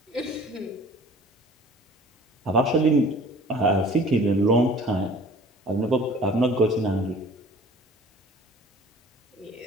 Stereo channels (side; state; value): both; normal; correlation 0.48